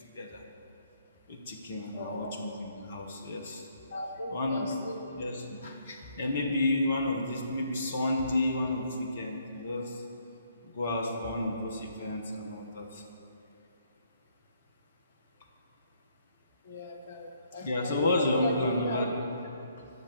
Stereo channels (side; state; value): both; inverted; correlation -0.69